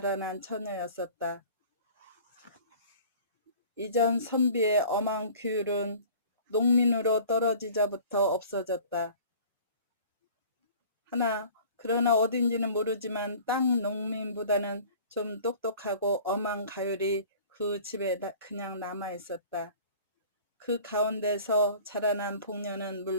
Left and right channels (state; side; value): inverted; both; correlation -0.47